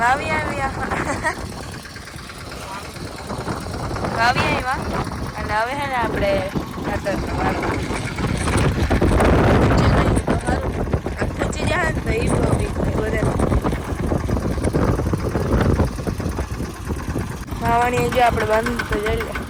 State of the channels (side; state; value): both; identical; correlation 1.00